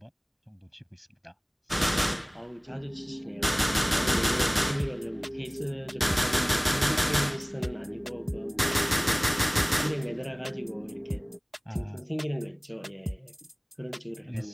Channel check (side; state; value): both; identical; correlation 1.00